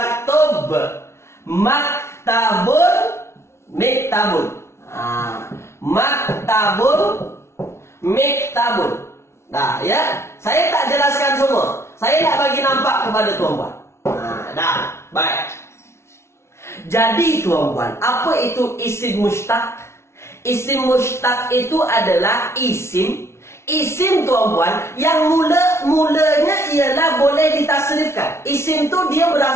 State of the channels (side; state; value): right; late; 0.13 ms